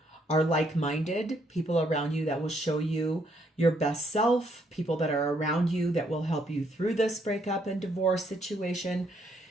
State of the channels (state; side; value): normal; both; correlation 0.71